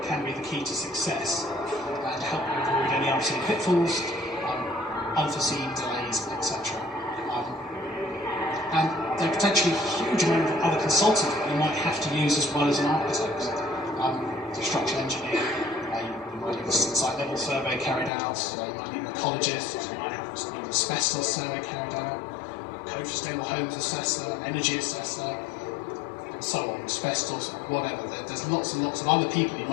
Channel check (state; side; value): drops out; right; at 18.1 s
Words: can be the key to success and help you avoid any unforeseen pitfalls, unforeseen delays, etc. And there are potentially a huge amount of other consultants that you might have to use as well as an architect. A structural engineer, you might need a site level survey carried out, you might need an ecologist, you might have an asbestos survey carried out, code for sustainable homes assessor, energy assessor, and so on, asbestos, whatever. There's lots and lots of other people you